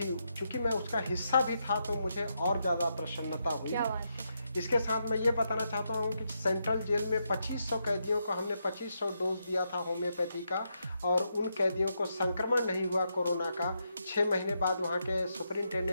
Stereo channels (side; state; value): both; inverted; correlation -0.82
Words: चूँकि मैं उसका हिस्सा भी था, तो मुझे और ज़्यादा प्रसन्नता हुई। इसके साथ मैं ये बताना चाहता हूँ कि सेंट्रल जेल में 2500 कैदियों को हमने 2500 डोज दिया था होम्योपैथी का, और उन कैदियों को संक्रमण नहीं हुआ कोरोना का। 6 महीने बाद वहाँ के